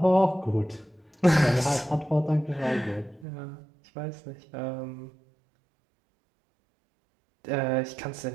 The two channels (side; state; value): left; drops out; at 3.2 s